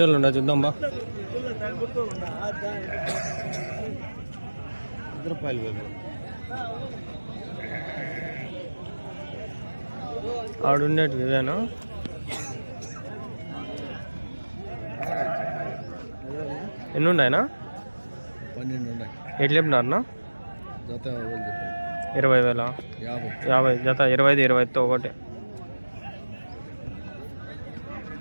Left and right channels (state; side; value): inverted; both; correlation -1.00